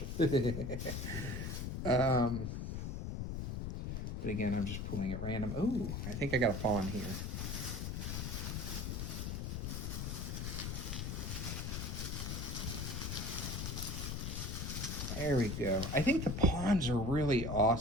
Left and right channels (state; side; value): noise; left; rumble, 3 dB below the sound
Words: But again, I'm just pulling at random. Oh, I think I got a pawn here. There we go. I think the pawns are really